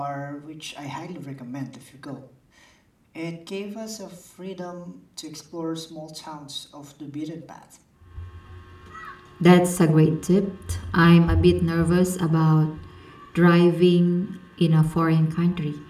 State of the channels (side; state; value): both; identical; correlation 1.00